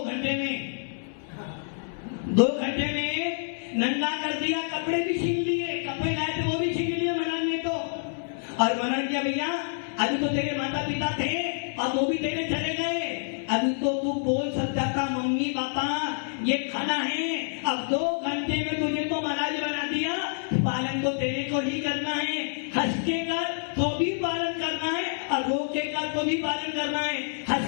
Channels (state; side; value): silent; right; 60 dB below the other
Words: घंटे में, 2 घंटे में नंगा कर दिया। कपड़े भी छीन लिए, कपड़े लाए थे वो भी छीन लिए महाराज ने तो। और महाराज क्या भैया, अभी तो तेरे माता पिता थे और वो भी तेरे चले गए, अभी तो तू बोल सकता था मम्मी पापा ये खाना है, अब 2 घंटे में तुझे तो महाराज बना दिया, पालन तो तेरे को ही करना है। हंस के कर तो भी पालन करना है और रो के कर तो भी पालन करना है।